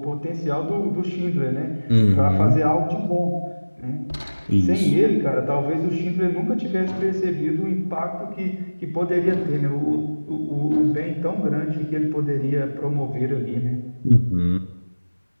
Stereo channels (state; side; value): inverted; both; correlation -1.00